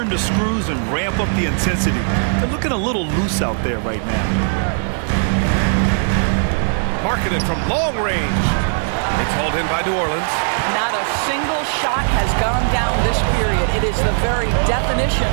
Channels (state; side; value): silent; left; digital silence